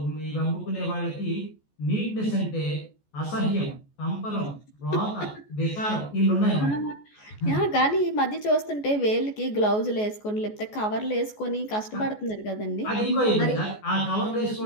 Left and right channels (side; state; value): right; late; 14 ms